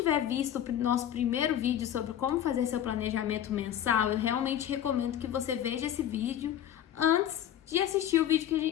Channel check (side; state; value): right; quieter; 10.7 dB